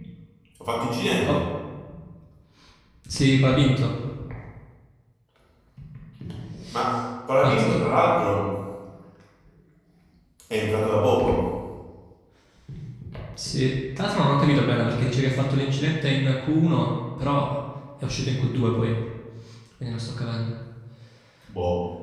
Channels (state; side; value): identical; both; correlation 1.00